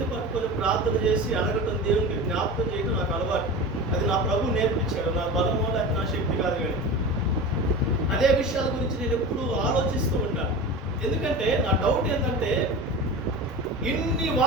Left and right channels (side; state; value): both; normal; correlation 0.30